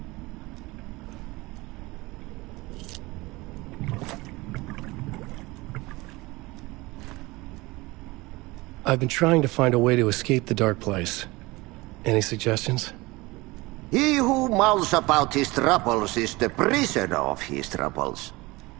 I've been trying to find a way to escape the dark place. Any suggestions? He who mouths about his troubles is the prisoner of his troubles.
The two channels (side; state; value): left; quieter; 22.0 dB